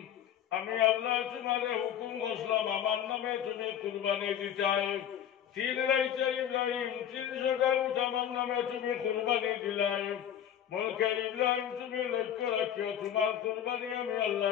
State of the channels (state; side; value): quieter; right; 9.9 dB